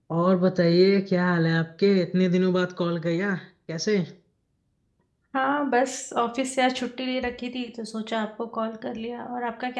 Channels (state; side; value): identical; both; correlation 1.00